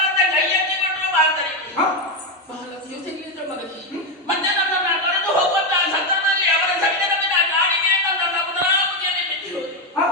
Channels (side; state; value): both; normal; correlation 0.07